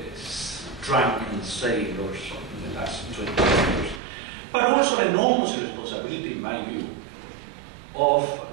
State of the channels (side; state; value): left; drops out; at 4.0 s